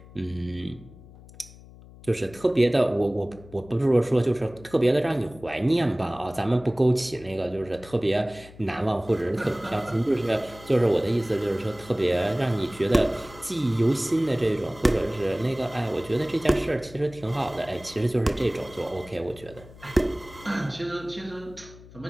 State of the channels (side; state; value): left; noise; hum, 20 dB below the sound